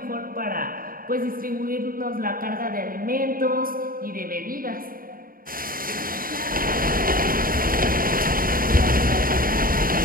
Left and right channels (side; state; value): left; late; 0.41 ms